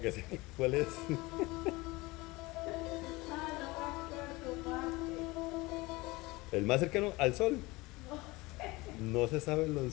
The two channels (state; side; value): quieter; right; 22.3 dB